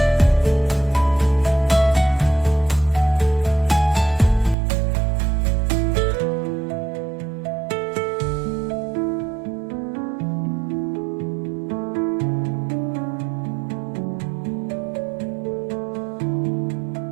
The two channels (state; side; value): drops out; left; at 4.5 s